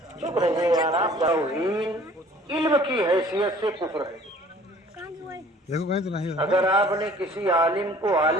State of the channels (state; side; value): normal; both; correlation 0.52